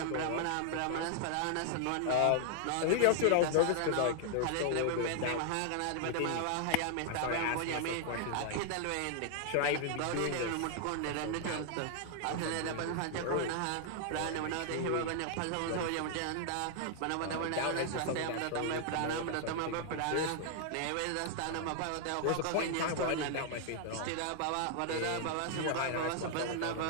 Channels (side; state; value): both; different; correlation 0.00